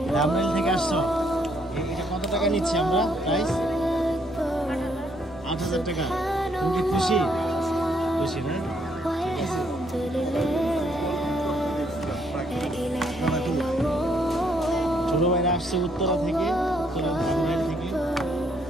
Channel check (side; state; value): both; normal; correlation 0.70